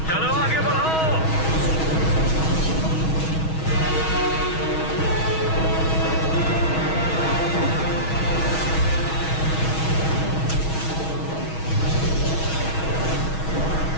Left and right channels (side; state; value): right; late; 6.3 ms